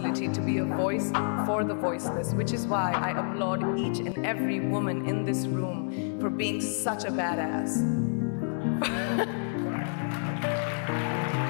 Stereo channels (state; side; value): silent; right; 59 dB below the other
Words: to be a voice for the voiceless, which is why I applaud each and every woman in this room for being such a badass.